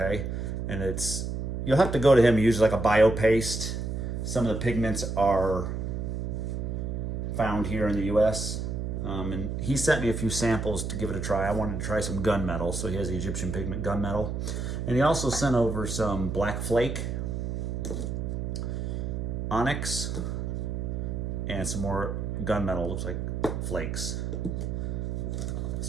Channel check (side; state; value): right; noise; hum, 3 dB below the sound